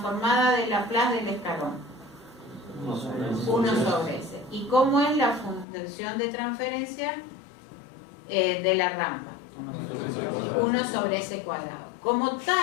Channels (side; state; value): right; drops out; at 5.7 s